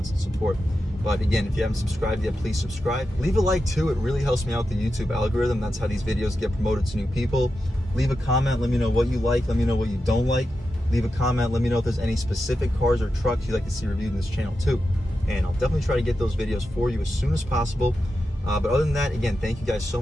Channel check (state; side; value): normal; both; correlation 0.89